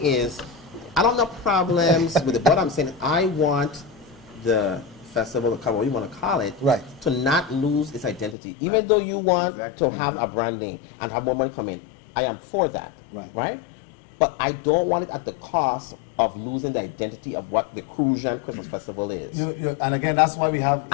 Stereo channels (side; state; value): right; drops out; at 8.3 s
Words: is, I don't have problems with it. What I'm saying, I want the festival, the carnival, you want to call it, Right. to not lose its identity. Even though you want to have a branding and have more money come in, I am for that. Right. But I don't want it at the cost of losing the identity of what the Crucian Christmas Festival is. And again, that's why we have